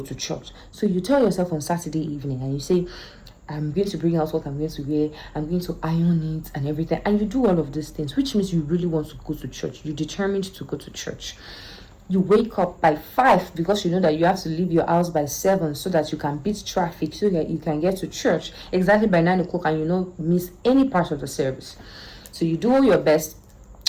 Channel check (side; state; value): both; identical; correlation 1.00